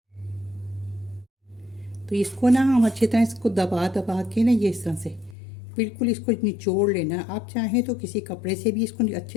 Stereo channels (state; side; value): drops out; right; at 5.4 s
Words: तो इसको ना हम अच्छी तरह इसको दबा दबा के ना ये इस तरह से बिल्कुल इसको निचोड़ लेना। आप चाहें तो किसी कपड़े से भी इसको